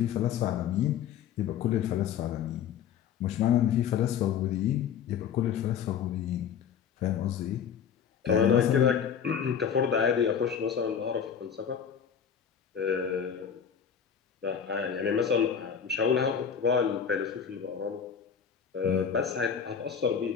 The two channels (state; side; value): quieter; right; 7.7 dB